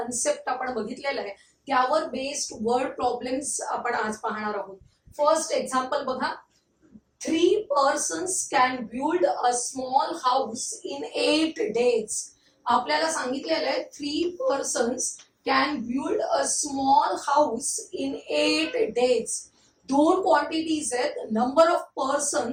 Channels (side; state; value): both; identical; correlation 1.00